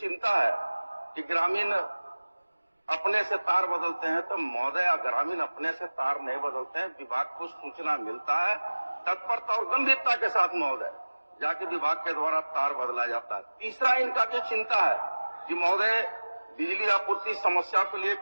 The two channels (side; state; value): both; inverted; correlation -1.00